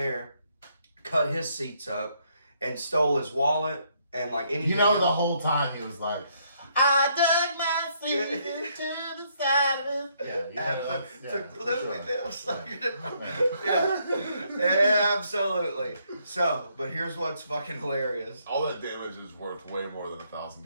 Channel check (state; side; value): inverted; both; correlation -0.71